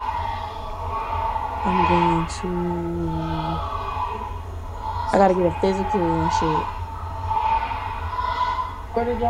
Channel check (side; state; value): both; identical; correlation 1.00